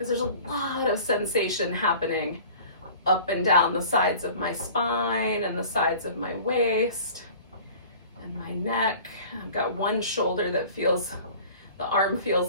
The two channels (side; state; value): both; inverted; correlation -0.44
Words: there's a lot of sensation happening up and down the sides of my spine and the sides of my waist and my neck. I've got one shoulder that feels, the arm